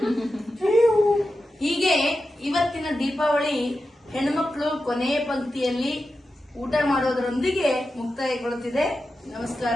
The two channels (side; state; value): both; normal; correlation 0.91